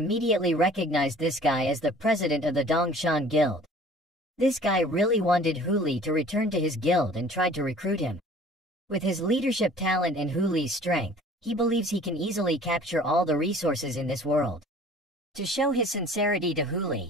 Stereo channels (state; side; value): normal; both; correlation 0.49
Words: recognized this guy as the president of the Dongshan Guild. This guy really wanted Huli to return to his guild and tried to recruit him. With his leadership talent and Huli's strength, he believes he can easily capture all the resources in this world. To show his sincerity to